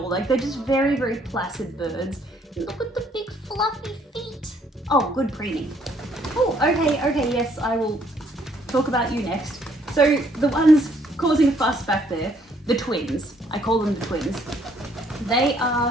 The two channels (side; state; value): both; normal; correlation 0.66